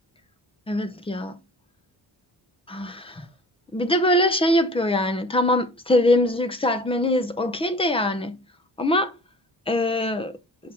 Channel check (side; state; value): both; normal; correlation 0.44